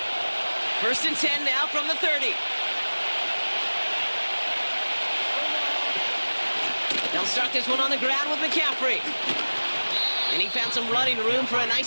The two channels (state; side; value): inverted; both; correlation -1.00